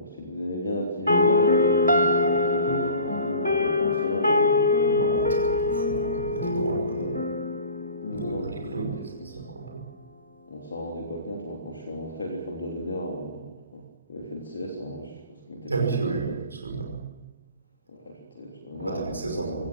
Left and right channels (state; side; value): inverted; both; correlation -0.45